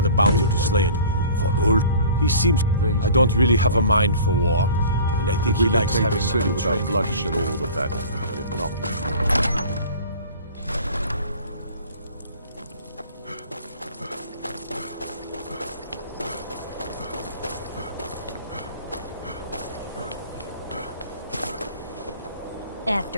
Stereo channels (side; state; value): both; inverted; correlation -0.44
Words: a bounty to slay it. For Ulf, he seems... I don't really have a mind for war, and I think If we he can likes take having the city nothing without trained. bloodshed, all the better. But if not,